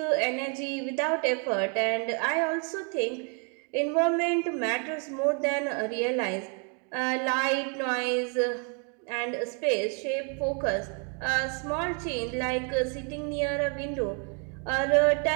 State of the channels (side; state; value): left; quieter; 38.8 dB